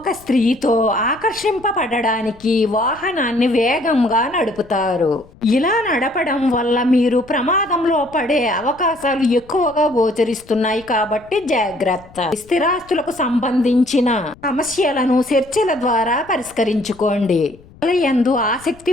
స్త్రీతో ఆకర్షింపబడడానికి వాహనాన్ని వేగంగా నడుపుతారు. ఇలా నడపడం వల్ల మీరు ప్రమాదంలో పడే అవకాశాలు ఎక్కువగా గోచరిస్తున్నాయి కాబట్టి జాగ్రత్త. స్థిరాస్తులకు సంబంధించిన సమస్యలను చర్చల ద్వారా పరిష్కరించుకోండి. యందు ఆసక్తి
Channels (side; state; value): left; noise; rumble, 24 dB below the sound